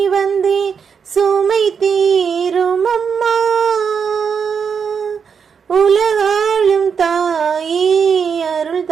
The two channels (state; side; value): quieter; left; 6.5 dB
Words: வந்தேன் சுமை தீரும் அம்மா. உலகாளும் தாயே அருள்